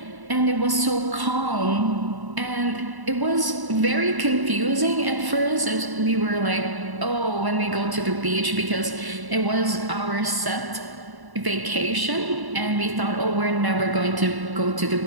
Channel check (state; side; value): late; left; 1.0 ms